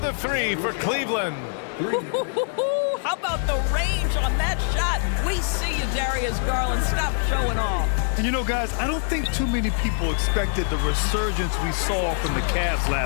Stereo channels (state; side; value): silent; right; 63 dB below the other